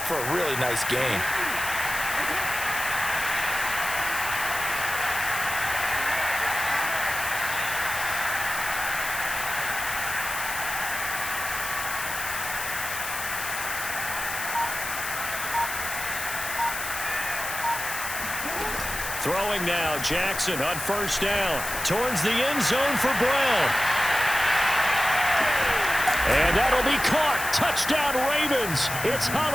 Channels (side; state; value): left; noise; hiss, 6 dB below the sound